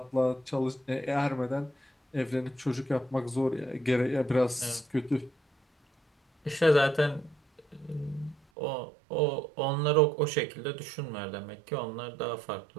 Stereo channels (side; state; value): left; drops out; at 8.3 s